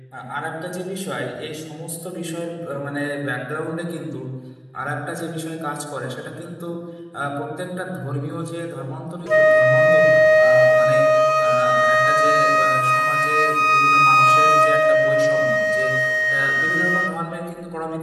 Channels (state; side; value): identical; both; correlation 1.00